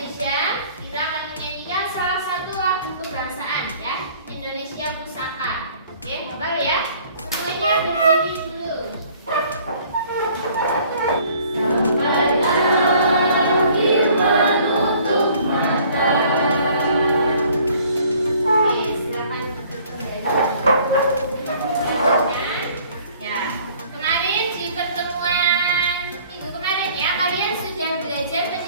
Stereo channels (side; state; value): both; inverted; correlation -0.55